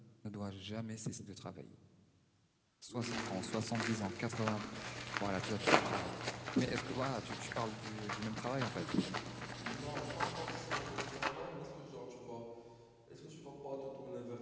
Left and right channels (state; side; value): identical; both; correlation 1.00